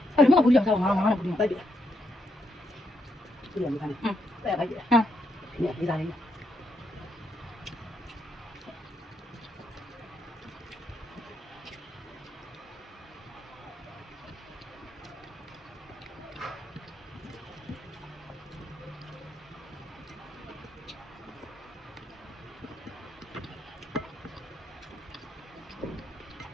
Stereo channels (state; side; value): normal; both; correlation 0.78